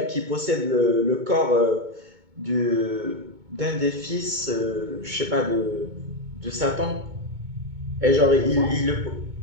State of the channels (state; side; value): late; left; 2.2 ms